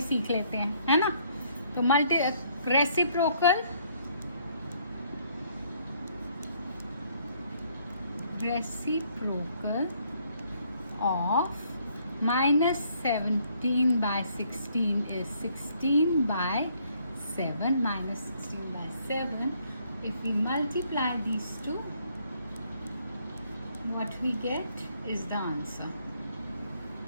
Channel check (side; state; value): both; inverted; correlation -0.67